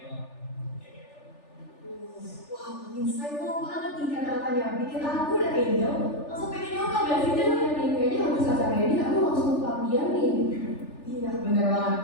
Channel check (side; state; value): right; late; 3.4 ms